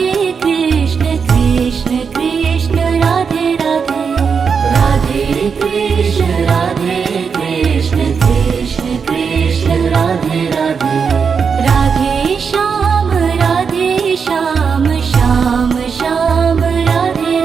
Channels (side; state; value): left; quieter; 6.0 dB